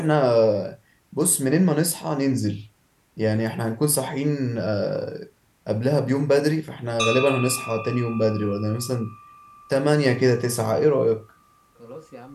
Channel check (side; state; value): both; identical; correlation 1.00